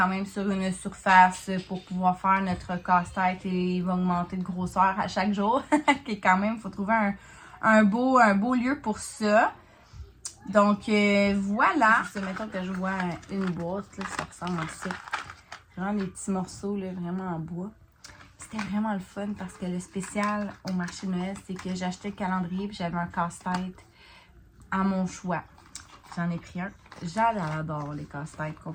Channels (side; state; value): both; identical; correlation 1.00